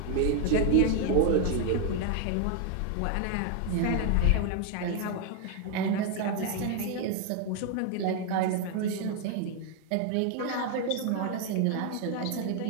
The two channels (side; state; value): both; different; correlation 0.00